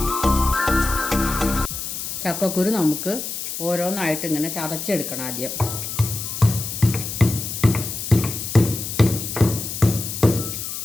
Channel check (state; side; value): noise; left; hiss, 6 dB below the sound